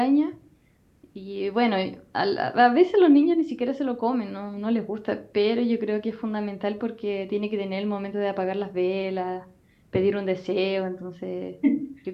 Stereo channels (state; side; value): identical; both; correlation 1.00